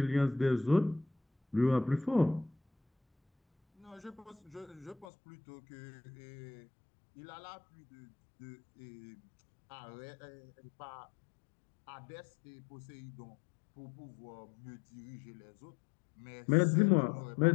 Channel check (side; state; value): right; drops out; at 5.1 s